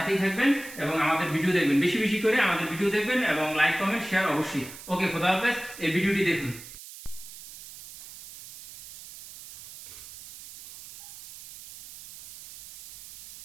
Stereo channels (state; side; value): noise; right; hiss, 15 dB below the sound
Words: থাকবেন এবং আমাদের ভিডিও দেখবেন, বেশি বেশি করে আমাদের ভিডিও দেখবেন, এবং লাইক কমেন্ট শেয়ার অবশ্যই। ওকে, খোদা হাফেজ। এই ভিডিওটি দেখুন।